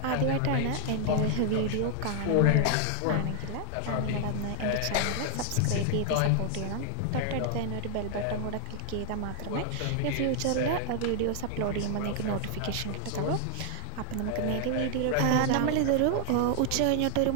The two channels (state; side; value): different; both; correlation 0.00